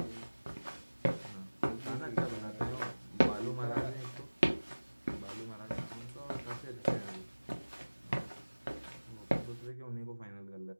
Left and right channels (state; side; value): inverted; both; correlation -1.00